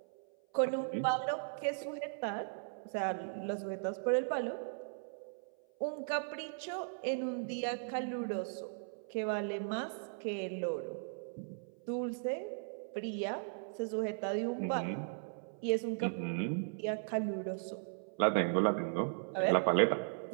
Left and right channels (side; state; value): left; silent; 53 dB below the other